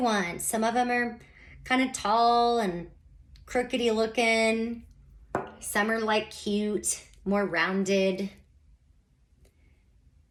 want. Some of them are kind of tall and crookedy looking. Some are like cute, more rounded.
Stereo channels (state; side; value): identical; both; correlation 1.00